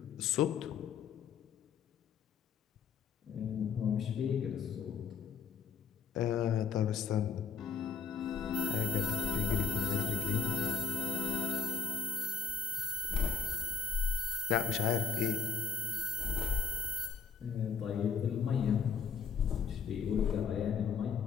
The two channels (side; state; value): right; quieter; 6.1 dB